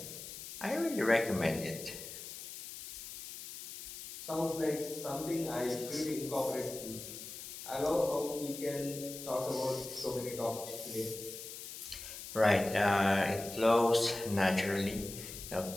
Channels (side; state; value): left; noise; hiss, 10 dB below the sound